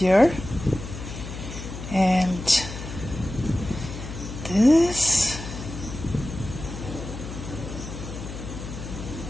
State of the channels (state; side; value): noise; left; hum, 9 dB below the sound